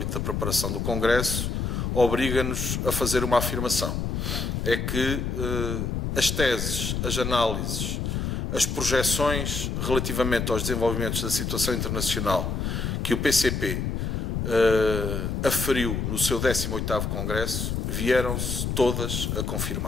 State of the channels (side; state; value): left; noise; rumble, 1 dB below the sound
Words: da preparação do Congresso, obriga-nos a fazer uma afirmação. É que as teses, as análises, as projeções relativamente aos desenvolvimentos da situação internacional que o PCP aferiu no seu 18º Congresso, vieram-se todas a